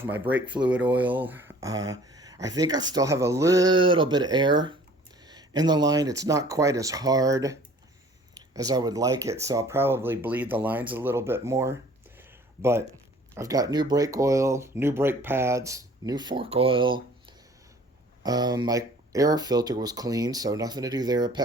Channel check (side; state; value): both; normal; correlation 0.51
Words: my brake fluid oil. I think I still have a little bit of air in the line. It's not quite as hard as I would like it, so I'll probably bleed the lines a little bit more. But I've got new brake oil, new brake pads, new fork oil. My air filter was clean, so nothing to do there.